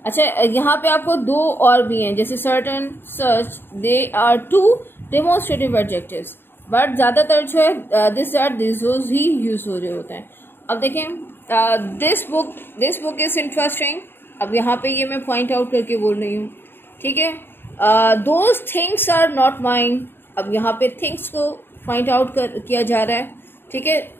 अच्छा, यहाँ पे आपको 2 और भी हैं, जैसे certain, such, they are 2 demonstrative adjectives, but ज़्यादातर जो है this, that, these, those he use हो रहे होते हैं। अब देखें this book is interesting, अब यहाँ पे ये मैं पॉइंट आउट करके बोल रही हूँ, ठीक है। Those things are not mine, अब यहाँ पे थिंग्स को पॉइंट आउट किया जा रहा है, ठीक है।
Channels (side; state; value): right; late; 0.10 ms